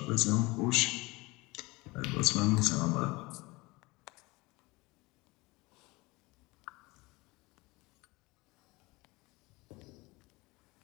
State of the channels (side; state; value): right; quieter; 23.2 dB